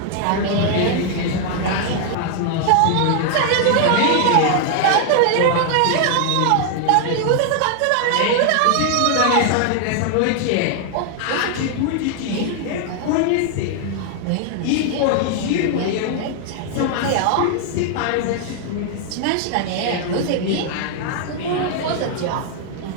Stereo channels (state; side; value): different; both; correlation 0.00